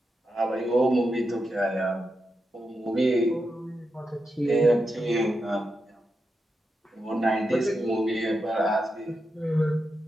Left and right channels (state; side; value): normal; both; correlation 0.87